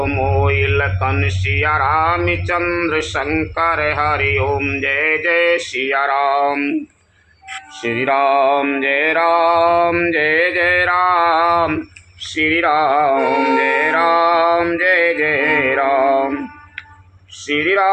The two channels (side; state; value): both; identical; correlation 1.00